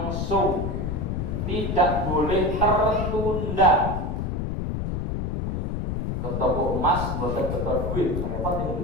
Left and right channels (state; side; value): noise; left; rumble, 2 dB below the sound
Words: tidak boleh tertunda. Ke toko emas bukan betul duit, apa